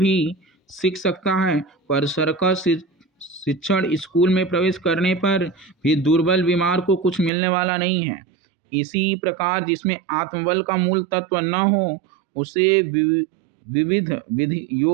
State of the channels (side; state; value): left; drops out; at 7.3 s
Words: सीख सकता है, पर सर्कस शिक्षण स्कूल में प्रवेश करने पर भी दुर्बल बीमार को कुछ मिलने वाला नहीं है। इसी प्रकार जिसमें आत्मबल का मूल तत्व न हो, उसे विविध विधि